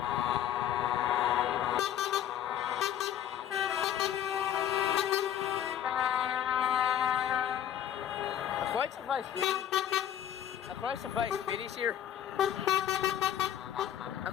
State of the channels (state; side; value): quieter; right; 10.4 dB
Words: Quite surprised I'm quite surprised Biddy's here. I'm